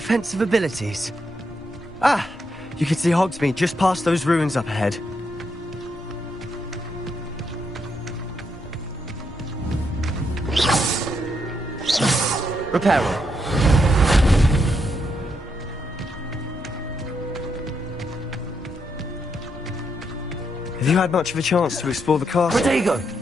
abilities. Ah, you can see Hogsmeade just past those ruins up ahead. Reparo. Have you had much of a chance to explore the castle? Rodrigo!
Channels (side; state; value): both; normal; correlation 0.79